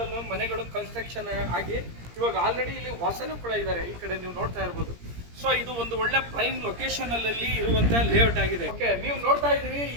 ಮನೆಗಳು ಕನ್ಸ್ಟ್ರಕ್ಷನ್ ಆಗಿ ಇವಾಗ ಆಲ್ರೆಡಿ ಇಲ್ಲಿ ವಾಸನೂ ಕೂಡ ಇದ್ದಾರೆ. ಈ ಕಡೆ ನೀವು ನೋಡ್ತಾ ಇರ್ಬೋದು. ಸೊ ಇದು ಒಂದು ಒಳ್ಳೆ ಪ್ರೈಮ್ ಲೊಕೇಶನ್ ಅಲ್ಲಿ ಇರುವಂತ ಲೇಔಟ್ ಆಗಿದೆ. ಓಕೆ, ನೀವು ನೋಡ್ತಾ ಇದ್ದೀರಿ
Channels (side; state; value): left; late; 17 ms